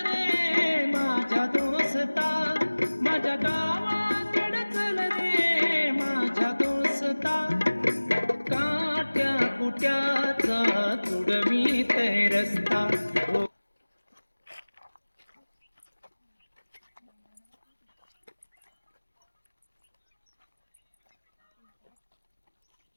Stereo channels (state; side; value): inverted; both; correlation -1.00